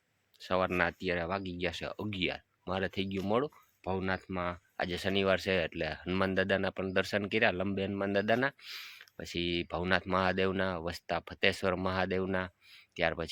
સવારના અત્યારે વાગી ગયા છે 11. મારે થઈ ગયું મોડું. ભવનાથમાં આજે શનિવાર છે એટલે હનુમાન દાદાના પણ દર્શન કર્યા, લંબે હનુમાન દાદાના, પછી ભવનાથ મહાદેવના, વસતા ફતેશ્વર મહાદેવના, ત્યાર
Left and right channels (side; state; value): both; identical; correlation 1.00